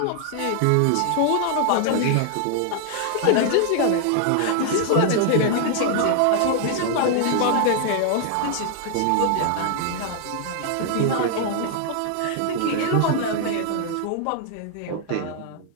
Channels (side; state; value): both; different; correlation 0.00